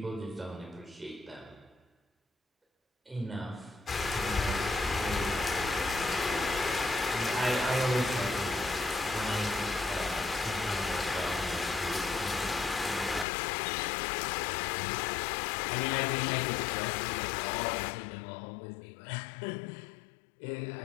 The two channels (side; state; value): right; drops out; at 13.2 s